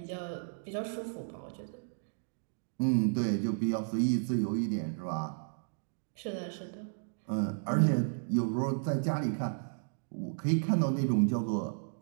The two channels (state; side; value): silent; left; digital silence